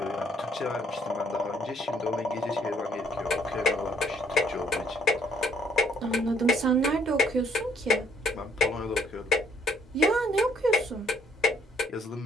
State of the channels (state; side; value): normal; both; correlation 0.65